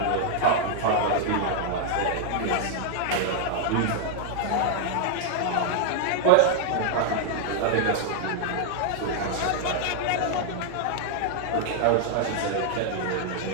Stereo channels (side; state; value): both; different; correlation 0.00